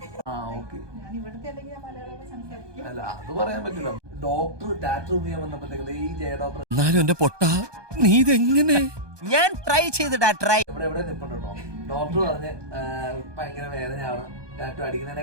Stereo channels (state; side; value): late; left; 1.2 ms